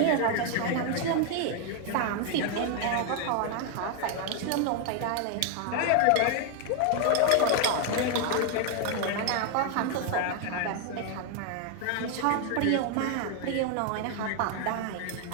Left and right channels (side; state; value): both; different; correlation 0.00